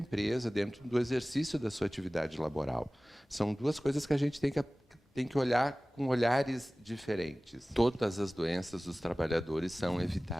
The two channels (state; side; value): normal; both; correlation 0.98